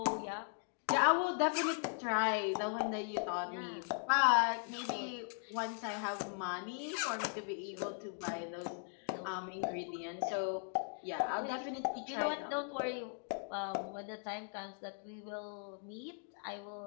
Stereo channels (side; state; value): right; silent; 52 dB below the other